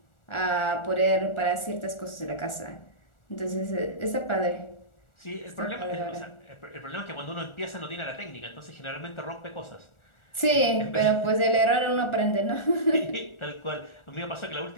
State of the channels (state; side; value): late; right; 1.4 ms